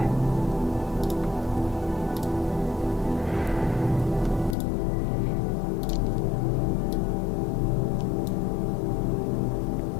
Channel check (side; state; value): right; drops out; at 4.5 s